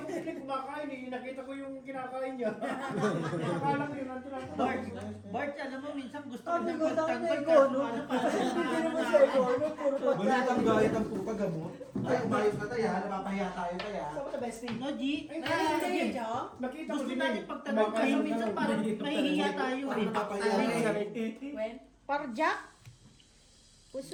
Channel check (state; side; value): identical; both; correlation 1.00